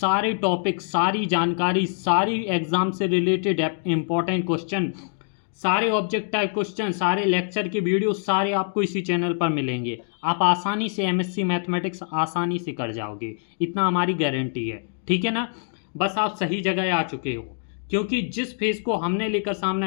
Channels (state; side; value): silent; right; digital silence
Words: टॉपिक, सारी जानकारी, सारी एग्ज़ाम से रिलेटेड इम्पॉर्टेंट क्वेश्चन, सारे ऑब्जेक्ट टाइप क्वेश्चन, सारे लेक्चर के वीडियो सारे आपको इसी चैनल पर मिलेंगे। आप आसानी से एमएससी मैथमेटिक्स आसानी से कर जाओगे, इतना हमारी गारंटी है। ठीक है ना। बस आप सही जगह आ चुके हो, क्योंकि जिस फेज़ को हमने लेकर